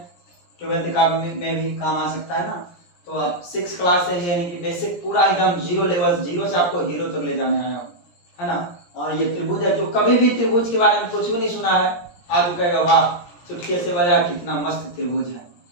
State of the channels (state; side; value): late; right; 17 ms